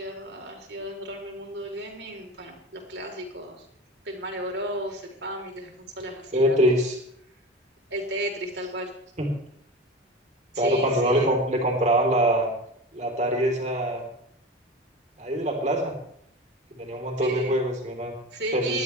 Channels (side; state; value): both; normal; correlation 0.30